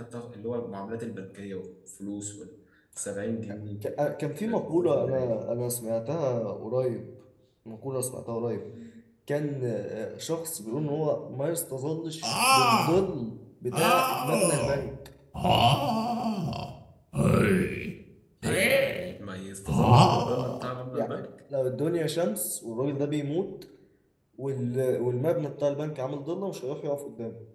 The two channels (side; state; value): both; identical; correlation 1.00